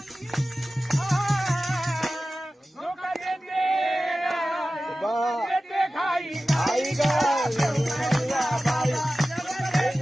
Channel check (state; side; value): normal; both; correlation 0.95